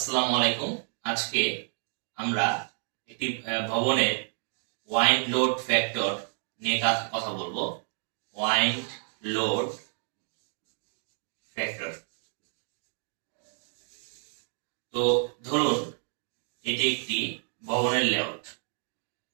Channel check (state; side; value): silent; left; 57 dB below the other